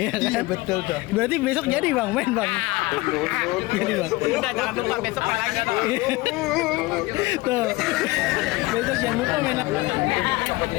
kan? Betul tuh. Berarti besok jadi bang main bang. Jadi bang. Udah jangan lupa besok main lagi. Tuh. Besok jangan lupa main lagi.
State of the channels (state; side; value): quieter; right; 21.4 dB